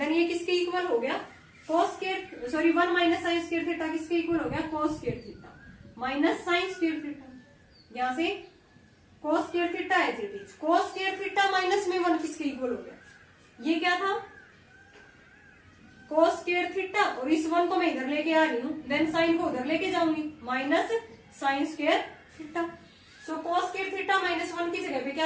ये किसके इक्वल हो गया cos square, sorry 1 minus sine square theta किसके इक्वल हो गया cos square theta minus sine square theta. यहाँ से cos स्क्वायर थीटा है cos स्क्वायर थीटा माइनस में 1 किसके इक्वल हो गया, ये क्या था cos स्क्वायर थीटा, और इस 1 को मैं इधर लेके आ रही हूँ, देन साइन को उधर लेके जाऊंगी माइनस साइन स्क्वायर थीटा। सो cos स्क्वायर थीटा माइनस 1 की जगह पे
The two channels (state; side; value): identical; both; correlation 1.00